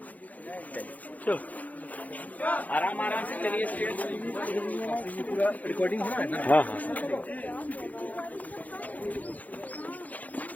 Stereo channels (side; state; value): right; late; 0.077 ms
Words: आराम आराम से चलिए। पूरा रिकॉर्डिंग हो रहा है ना? हाँ हाँ।